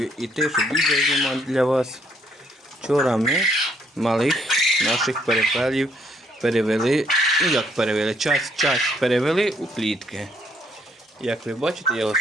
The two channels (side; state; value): both; normal; correlation 0.69